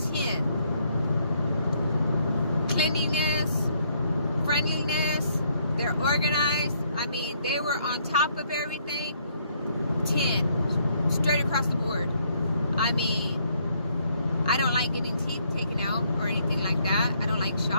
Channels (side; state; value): both; inverted; correlation -0.69